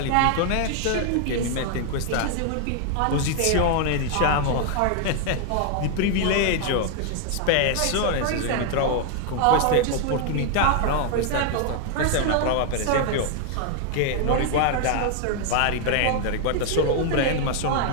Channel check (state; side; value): different; both; correlation 0.00